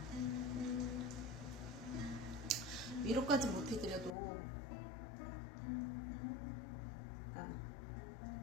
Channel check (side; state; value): right; drops out; at 4.2 s